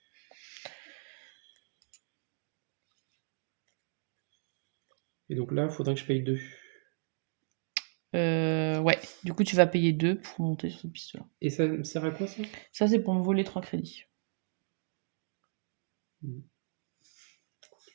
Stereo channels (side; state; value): left; silent; digital silence